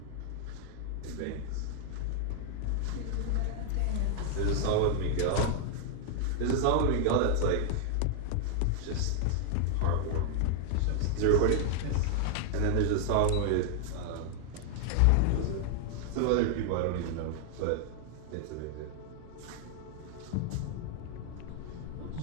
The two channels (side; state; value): both; different; correlation 0.00